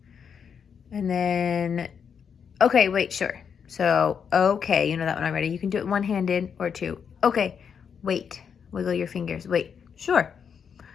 And then, okay, wait, sure. So, okay, you know that one already. You can do it one-handed or two. Okay, wait. Wiggle your fingers. Wait, sure.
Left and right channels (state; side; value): quieter; right; 7.0 dB